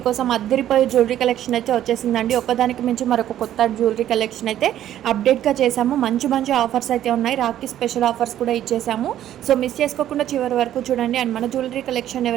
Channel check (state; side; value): quieter; left; 11.8 dB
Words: అద్దరిపోయే జ్యువెలరీ కలెక్షన్ అయితే వచ్చేసిందండి. ఒక్కదానికి మించి మరొక కొత్త జ్యువెలరీ కలెక్షన్ అయితే అప్డేట్గా చేశాము. మంచి మంచి ఆఫర్స్ అయితే ఉన్నాయి. రాఖీ స్పెషల్ ఆఫర్స్ కూడా ఇచ్చేసాము. సో మిస్ చేసుకోకుండా చివరి వరకు చూడండి. అండ్ మన జ్యువెలరీ కలెక్షన్